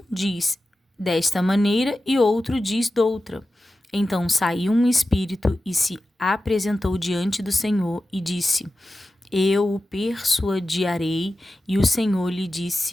diz desta maneira e outro diz doutra. Então saiu um espírito e se apresentou diante do Senhor e disse: eu o persuadirei. E o Senhor lhe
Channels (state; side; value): normal; both; correlation 0.93